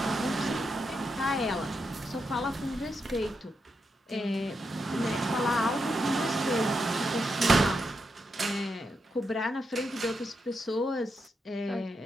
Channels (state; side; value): normal; both; correlation 0.84